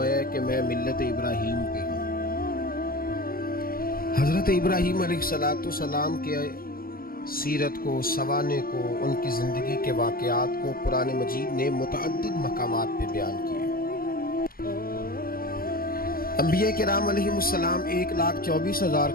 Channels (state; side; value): late; right; 0.43 ms